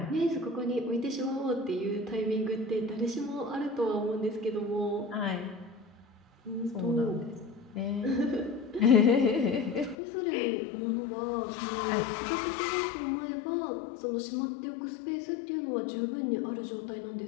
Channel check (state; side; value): drops out; right; at 10.0 s